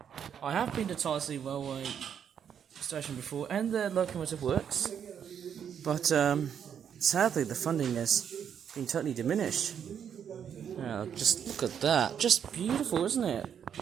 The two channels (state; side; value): quieter; left; 8.3 dB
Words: I have been to Tyseley Railway Station before, and the locomotive works, but sadly the funding has been totally diminished. Just look at that, just beautiful, isn't it?